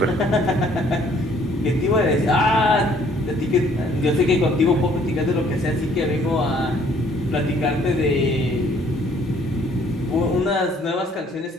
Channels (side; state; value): both; normal; correlation 0.61